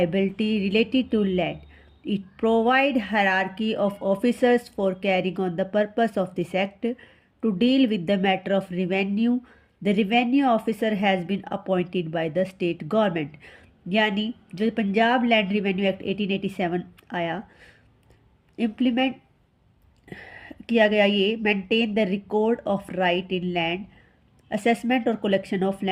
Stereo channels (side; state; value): both; identical; correlation 1.00